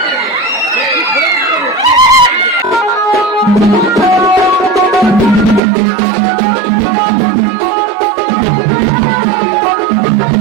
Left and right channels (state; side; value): drops out; left; at 5.6 s